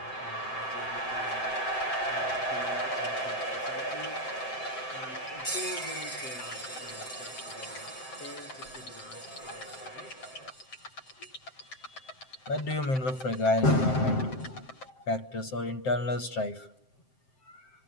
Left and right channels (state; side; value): late; right; 7.7 ms